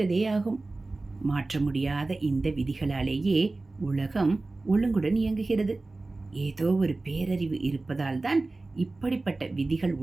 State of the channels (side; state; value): left; quieter; 3.2 dB